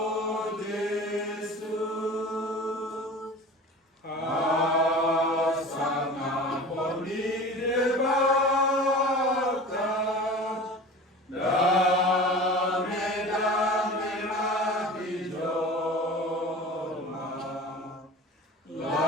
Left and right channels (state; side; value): normal; both; correlation 0.37